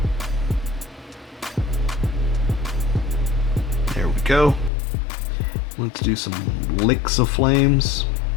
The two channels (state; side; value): drops out; right; at 4.7 s